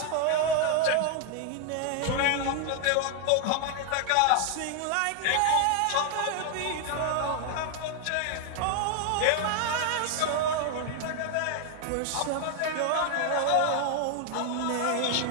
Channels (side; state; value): both; different; correlation 0.00